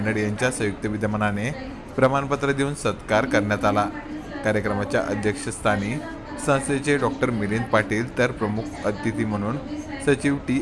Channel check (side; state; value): both; identical; correlation 1.00